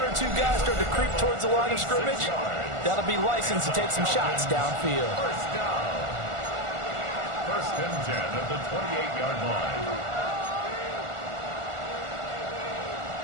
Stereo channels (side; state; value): left; late; 1.4 ms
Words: 2 guys start to creep towards the line of scrimmage, that'll be licensed to take some shots downfield. First down. 1st and 10 at the 28-yard line.